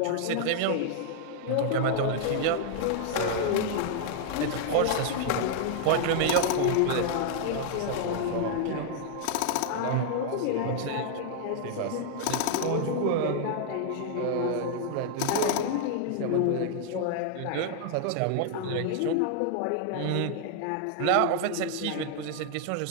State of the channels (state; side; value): different; both; correlation 0.00